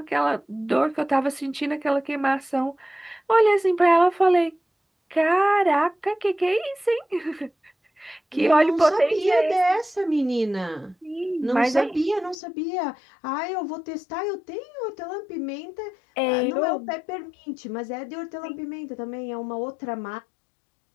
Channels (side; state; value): right; drops out; at 12.4 s